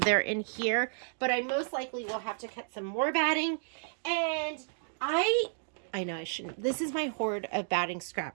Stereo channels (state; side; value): silent; left; digital silence